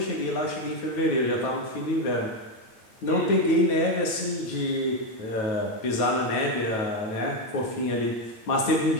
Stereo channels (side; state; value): right; late; 9.2 ms